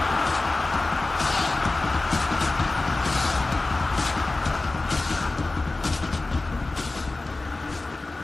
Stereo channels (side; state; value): right; quieter; 3.2 dB